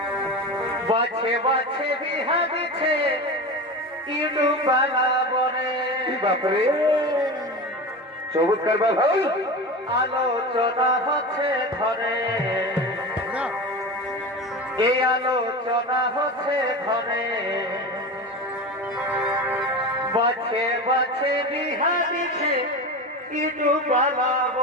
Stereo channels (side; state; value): both; normal; correlation 0.27